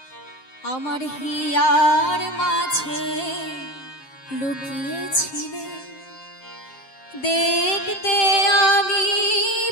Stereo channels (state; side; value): late; right; 7.6 ms